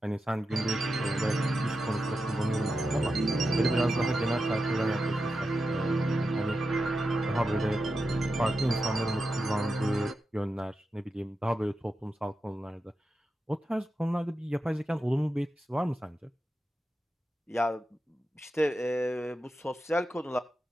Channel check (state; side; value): normal; both; correlation 0.89